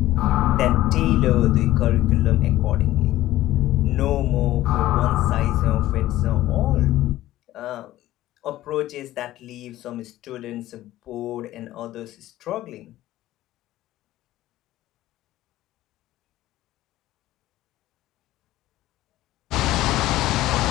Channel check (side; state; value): right; quieter; 15.3 dB